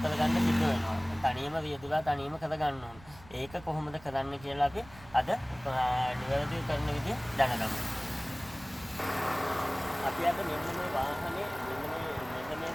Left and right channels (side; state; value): right; noise; rumble, 21 dB below the sound